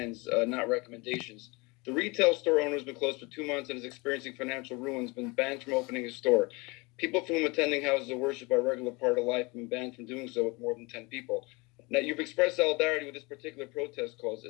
not recommendations. The retail store owner has been closed for 2 months and is experiencing financial ruin, has been banned from opening his store. People from attending houses of worship are a regular part of life have been banned from doing so with more than 10 people. Now, you've expressed solidarity with this particular protest cause.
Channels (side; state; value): right; quieter; 26.5 dB